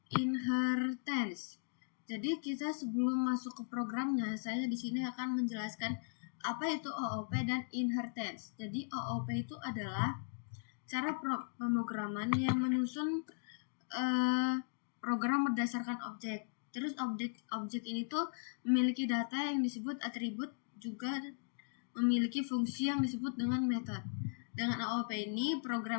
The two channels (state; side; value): silent; right; digital silence